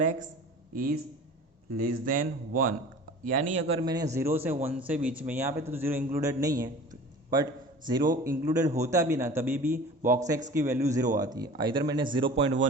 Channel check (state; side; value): normal; both; correlation 0.41